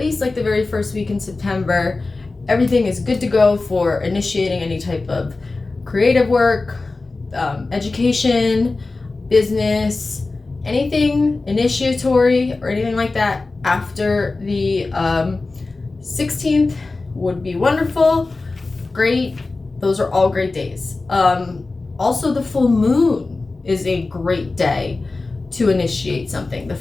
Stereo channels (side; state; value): right; quieter; 3.5 dB